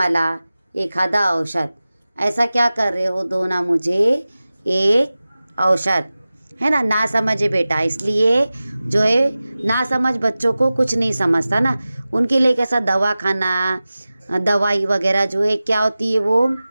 एखादा औषध. ऐसा क्या कर रहे हो, दो ना मुझे एक औषध. है ना, ना समझे बेटा. इसलिए जो है ना समझ बच्चों को कुछ नहीं समझता ना. उनके लिए कैसा दवा खाना, दवाई वगैरह जो है क्या होती है, वो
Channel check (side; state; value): both; inverted; correlation -0.96